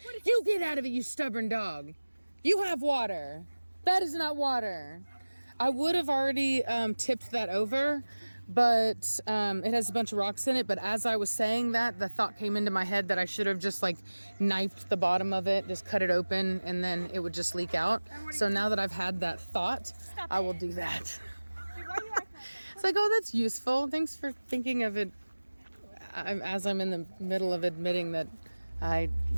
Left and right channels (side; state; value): both; inverted; correlation -1.00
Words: You get out of it, you stubborn dog. You have water. That is not water. I would have already tipped that over, but it has a bunch of rocks in it. But as I was saying that, the thought came into my head that I should have just like knifed the bottom of it, just cut it open, and then it would just leak out. So now that I've had that thought, I will do that. Dude, why are you acting like that? It's like, oh, that's useful. Thanks for thinking of it as I'm in the middle of admitting that I